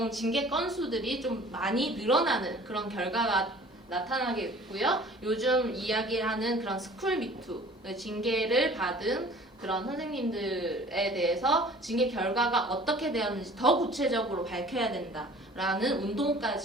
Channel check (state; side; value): normal; both; correlation 0.48